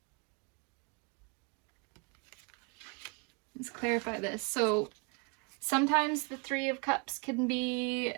Let's clarify this. So sometimes the Three of Cups could be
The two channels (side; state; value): left; quieter; 33.1 dB